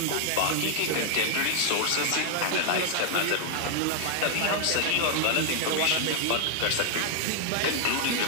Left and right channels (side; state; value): both; different; correlation 0.00